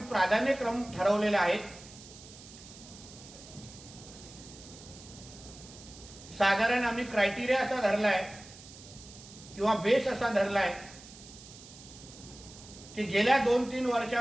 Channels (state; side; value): noise; right; hiss, 18 dB below the sound